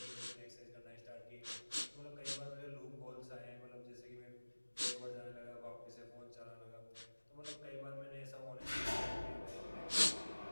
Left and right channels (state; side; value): inverted; both; correlation -1.00